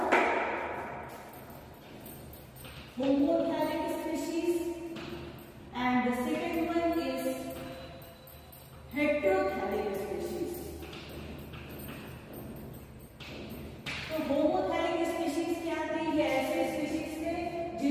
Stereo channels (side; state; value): both; identical; correlation 1.00